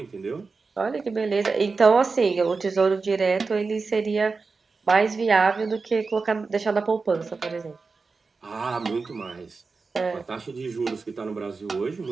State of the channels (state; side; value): quieter; left; 4.4 dB